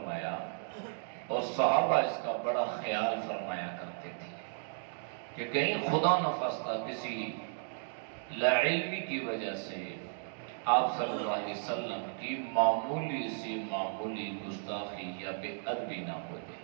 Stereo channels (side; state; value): left; silent; digital silence